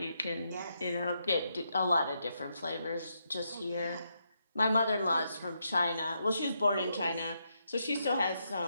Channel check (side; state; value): both; inverted; correlation -0.80